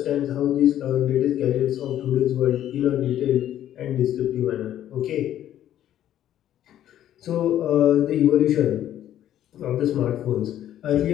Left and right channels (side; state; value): right; quieter; 11.7 dB